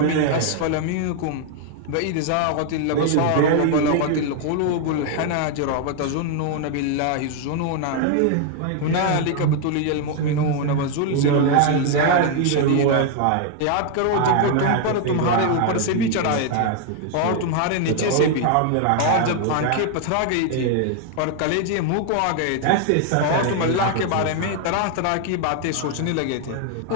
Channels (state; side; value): different; both; correlation 0.00